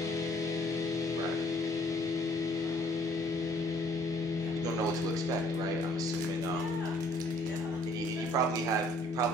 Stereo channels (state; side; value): normal; both; correlation 0.60